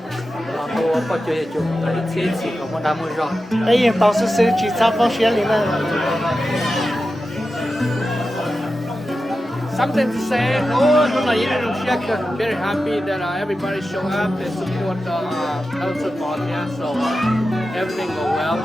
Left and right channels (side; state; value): both; normal; correlation 0.92